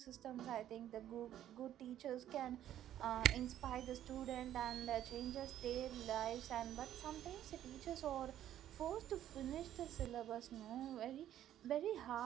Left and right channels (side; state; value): left; quieter; 11.7 dB